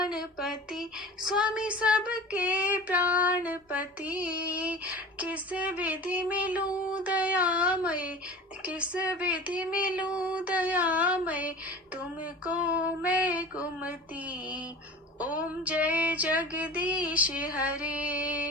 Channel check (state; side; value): normal; both; correlation 0.38